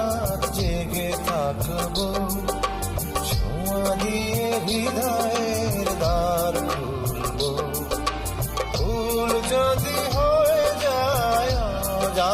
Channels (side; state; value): both; identical; correlation 1.00